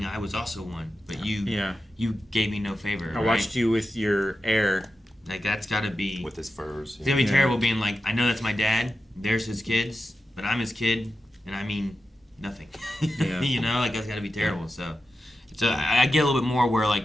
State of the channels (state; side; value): normal; both; correlation 0.91